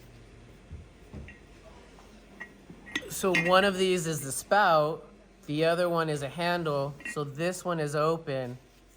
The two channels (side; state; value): both; identical; correlation 1.00